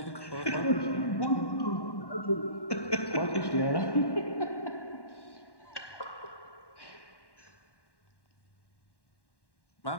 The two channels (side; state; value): right; late; 1.1 ms